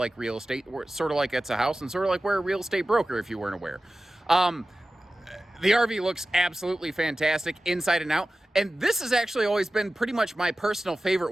real estate, sort of like it's a house, and sort of like we're a real estate broker, if you weren't aware. The RV looks absolutely fantastic inside and out. And this has actually always been pretty much my personal favorite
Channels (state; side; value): normal; both; correlation 0.95